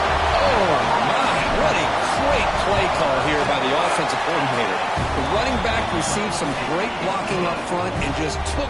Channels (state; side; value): identical; both; correlation 1.00